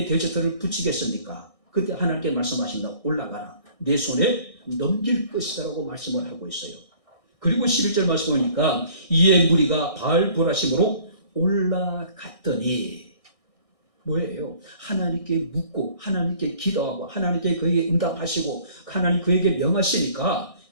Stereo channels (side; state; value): right; late; 1.6 ms